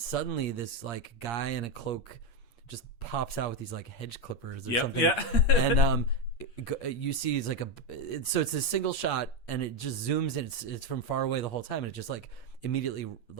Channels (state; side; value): late; right; 8.5 ms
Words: this like guy in a cloak just pops out with these like hedge clippers or something. Yeah. And you see it's like so it's a single shot and it just zooms in. It's from far away the whole time. And it just like immediately